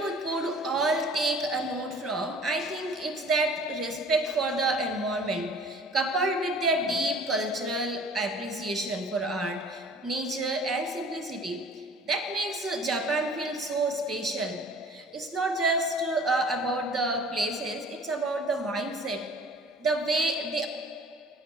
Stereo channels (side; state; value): both; normal; correlation 0.48